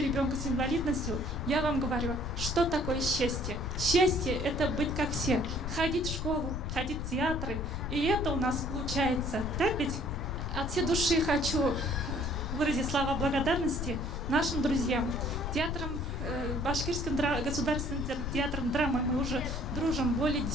ребенка с инвалидностью, я вам говорю, что такое счастье. Счастье – это быть как все. Ходить в школу, ходить в театры. И это у нас получается. Так ведь? От всей души хочу выразить слова благодарности нашим друзьям. Башкирским государственным театром драмы мы уже дружим более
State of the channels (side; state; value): left; noise; rumble, 3 dB below the sound